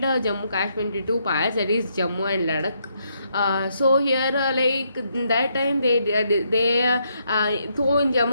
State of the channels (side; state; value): both; inverted; correlation -0.76